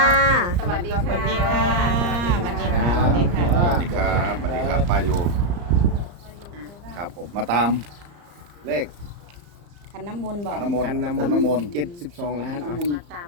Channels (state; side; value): late; left; 34 ms